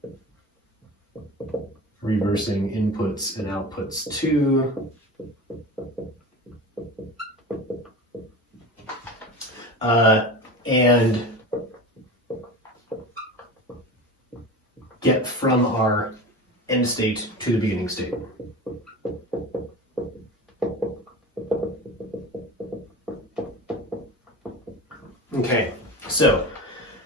reversing inputs and outputs to and get from our end state to the beginning state. Okay, so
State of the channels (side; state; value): both; normal; correlation 0.30